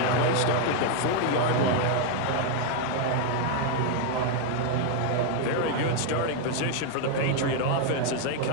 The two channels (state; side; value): different; both; correlation 0.00